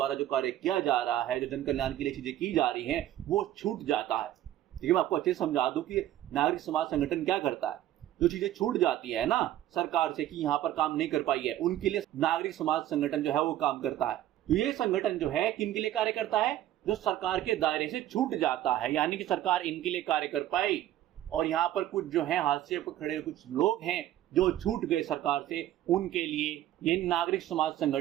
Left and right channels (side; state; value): left; quieter; 13.0 dB